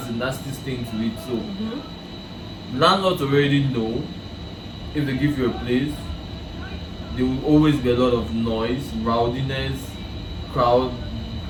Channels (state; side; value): identical; both; correlation 1.00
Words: a nasty stain to it. So landlords already know if they give you a place, there will always be a lot of noise, rowdiness, crowd.